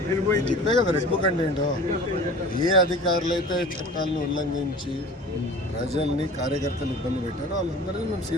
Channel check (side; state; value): both; normal; correlation 0.41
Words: ఇప్పుడే కదా రెడ్ బుక్ అంటే ఏంటో ఏ అధికారులు అయితే చట్టాలను ఉల్లంఘించి ప్రజల్ని కార్యకర్తలు ఇబ్బంది పెట్టారో వాళ్ళందరినీ మేము